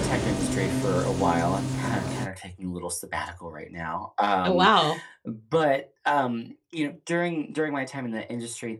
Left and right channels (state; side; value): identical; both; correlation 1.00